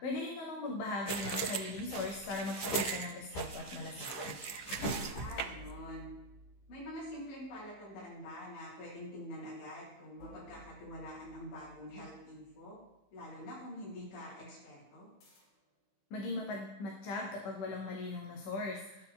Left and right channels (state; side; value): late; right; 15 ms